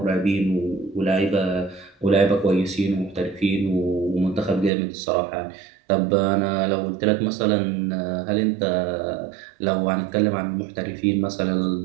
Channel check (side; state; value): left; drops out; at 4.7 s